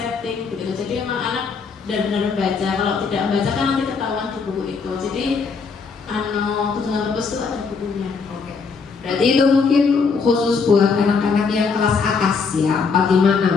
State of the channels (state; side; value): quieter; right; 5.1 dB